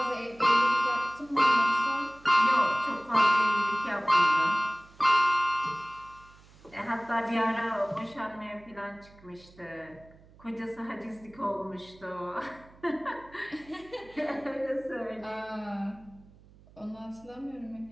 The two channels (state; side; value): noise; right; hum, 25 dB below the sound